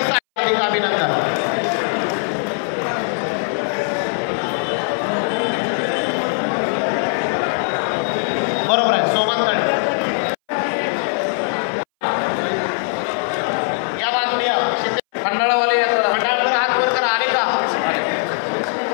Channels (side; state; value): right; silent; 62 dB below the other